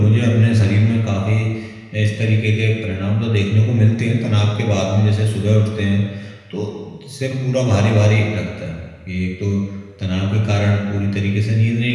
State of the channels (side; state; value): both; identical; correlation 1.00